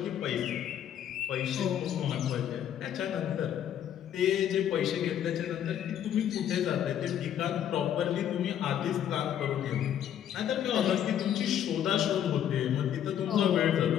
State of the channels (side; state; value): right; quieter; 10.1 dB